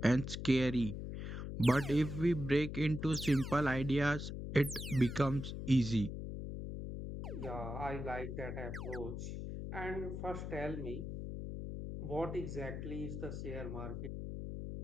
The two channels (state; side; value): noise; left; hum, 6 dB below the sound